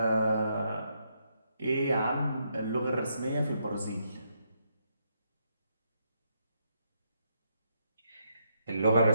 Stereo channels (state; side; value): inverted; both; correlation -0.78